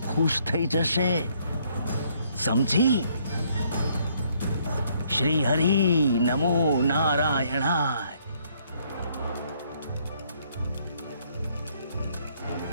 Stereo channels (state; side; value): inverted; both; correlation -0.67